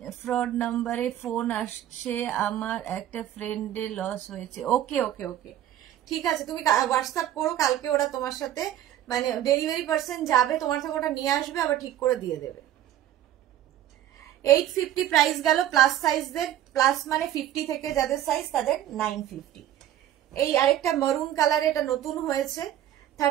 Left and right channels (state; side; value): quieter; left; 12.1 dB